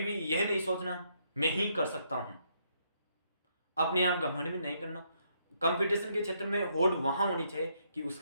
यह नहीं सोचना मैं ही कर सकता हूं। अपने आप घमंड में नहीं करना। कंपटीशन के क्षेत्र में होड़ वहां होनी चाहिए कि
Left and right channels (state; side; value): inverted; both; correlation -0.73